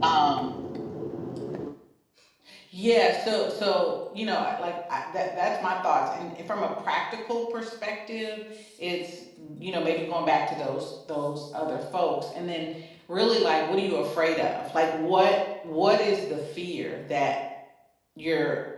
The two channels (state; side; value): identical; both; correlation 1.00